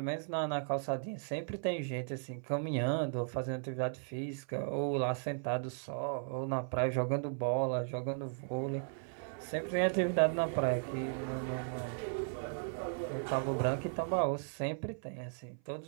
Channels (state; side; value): silent; left; 54 dB below the other